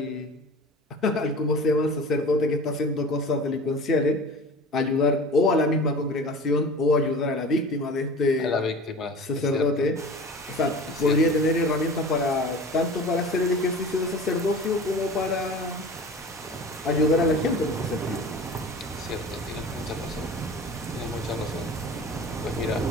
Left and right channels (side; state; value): both; normal; correlation 0.38